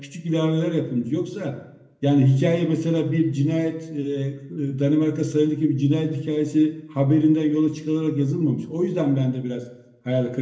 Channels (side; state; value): both; identical; correlation 1.00